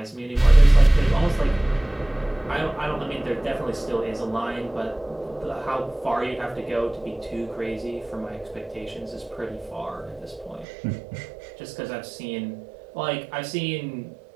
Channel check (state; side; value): drops out; left; at 10.7 s